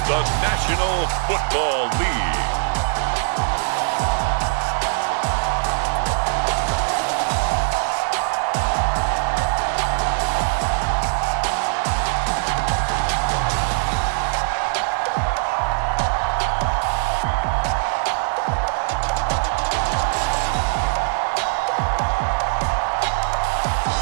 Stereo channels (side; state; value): left; silent; 65 dB below the other